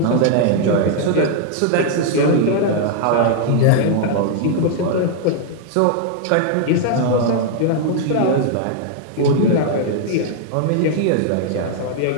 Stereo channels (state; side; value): different; both; correlation 0.00